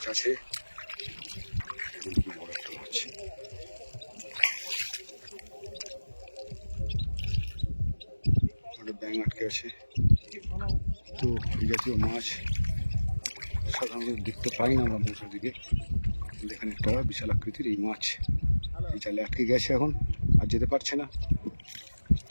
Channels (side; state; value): both; inverted; correlation -1.00